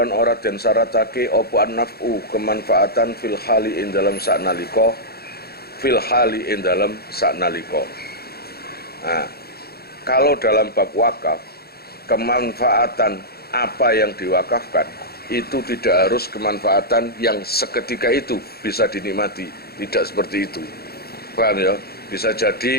ora den syaratake apa an-naf'u kemanfaatan fil hali ing dalam saknalika fil hali ing dalam saknalika. Nah, kalau dalam bab wakaf kemanfaatan apa yang diwakafkan itu tidak harus kemanfaatan yang seketika itu bisa dinikmati, tidak seperti itu. Paham ya? Bisa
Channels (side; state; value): right; late; 0.46 ms